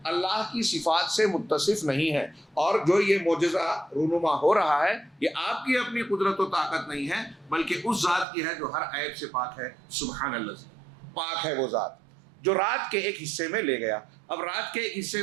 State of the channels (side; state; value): left; drops out; at 8.2 s